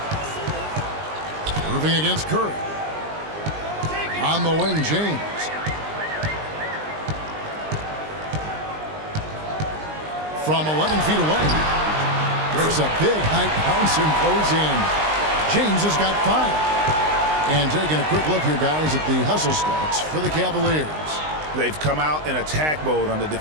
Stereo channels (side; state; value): left; late; 19 ms